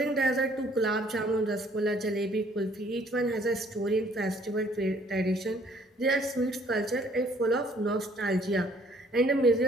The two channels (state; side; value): normal; both; correlation 0.60